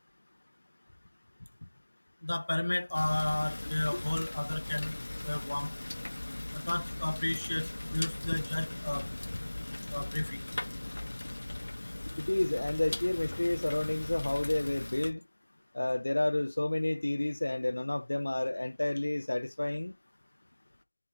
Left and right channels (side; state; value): both; inverted; correlation -1.00